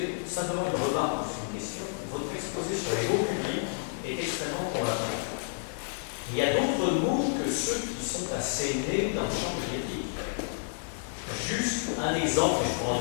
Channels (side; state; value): right; silent; digital silence